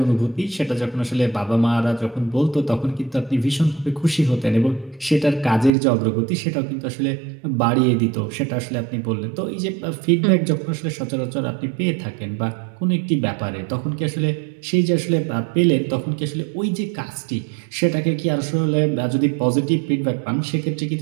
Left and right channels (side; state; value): left; drops out; at 5.7 s